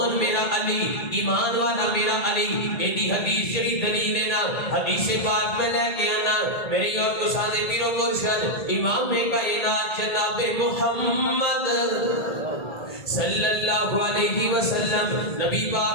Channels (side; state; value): right; late; 1.8 ms